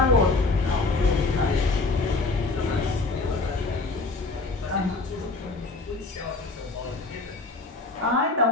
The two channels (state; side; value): quieter; right; 3.5 dB